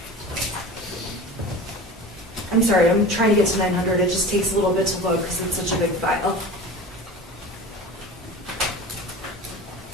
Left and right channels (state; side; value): normal; both; correlation 0.35